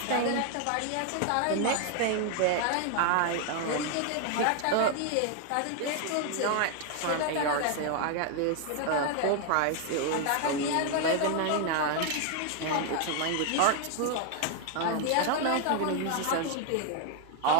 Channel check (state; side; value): different; both; correlation 0.00